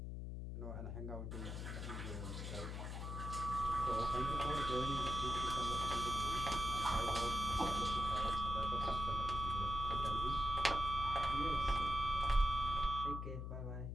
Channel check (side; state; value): left; noise; hum, 5 dB below the sound